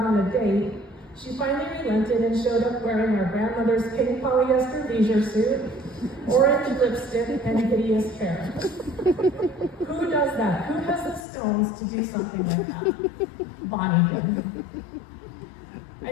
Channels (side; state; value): right; drops out; at 11.2 s